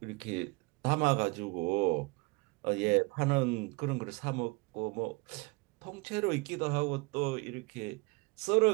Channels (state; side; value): quieter; left; 26.3 dB